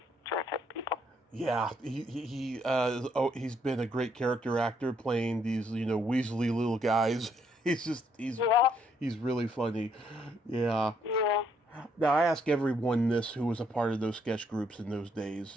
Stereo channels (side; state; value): both; normal; correlation 0.71